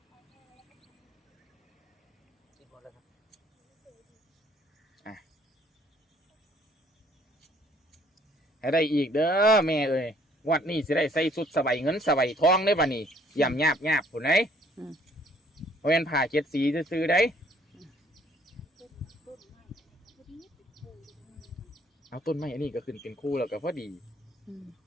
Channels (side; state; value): both; normal; correlation 0.61